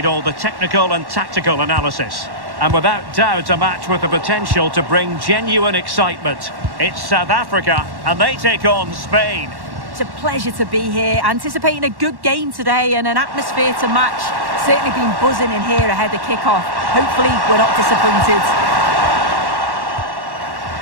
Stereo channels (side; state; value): left; late; 1.1 ms